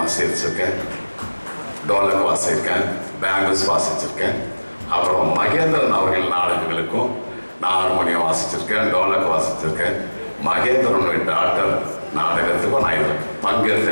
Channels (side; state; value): both; inverted; correlation -1.00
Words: டோலக் வாசிச்சிருக்கேன், பேங்கிள்ஸ் வாசிச்சிருக்கேன். அப்புறம் மகேந்திரன் அவர்கள் நாடகங்களுக்கும் நான் ஹார்மோனியம் வாசிச்சிருக்கேன், டோலக் வாசிச்சிருக்கேன். மகேந்திரனுடைய டாக்டர் நாடகத்துக்கும் நான் இதில்